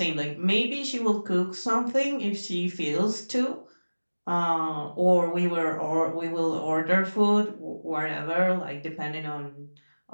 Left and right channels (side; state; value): both; inverted; correlation -1.00